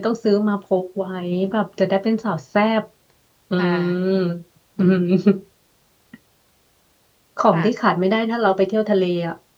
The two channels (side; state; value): both; identical; correlation 1.00